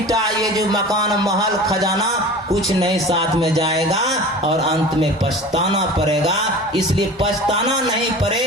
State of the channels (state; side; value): normal; both; correlation 0.37